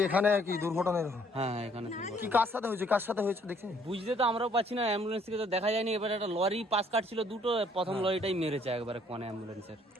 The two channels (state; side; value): normal; both; correlation 0.63